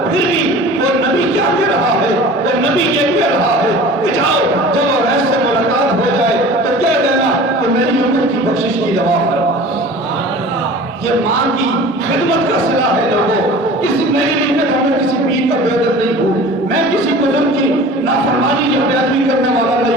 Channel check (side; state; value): both; normal; correlation 0.40